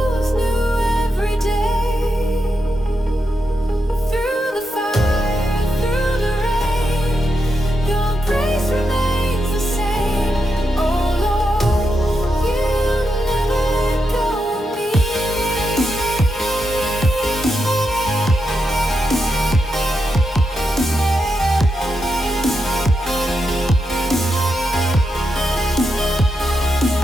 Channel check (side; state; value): both; normal; correlation 0.85